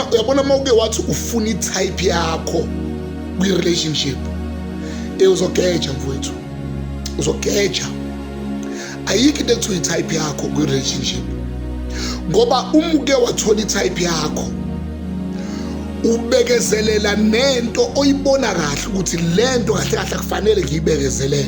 mawuke wathi ufuna i-type yakho kwi-relationship, uzogeja mfowethu, uzogeja. Ayikho into ekuthiwa i-type yakho kwi-relationship, ngoba umuke wathola i-type yakho ubekezelela nento oyibona kahle ukuthi lento kahle kahle kufanele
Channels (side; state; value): both; identical; correlation 1.00